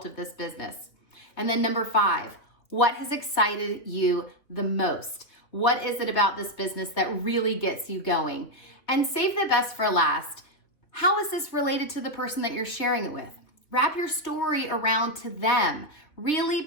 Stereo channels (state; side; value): late; right; 3.1 ms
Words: of this business? And then number five, what has excited you the most? What is it about this business that really gets you going? And save the best for last. How is this related to the person that you're sharing it with? Wrap your story around to them. Really,